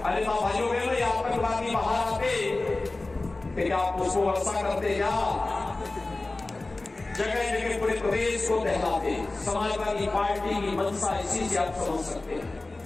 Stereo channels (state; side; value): quieter; right; 3.1 dB